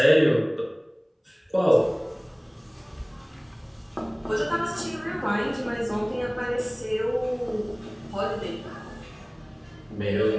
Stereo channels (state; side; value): identical; both; correlation 1.00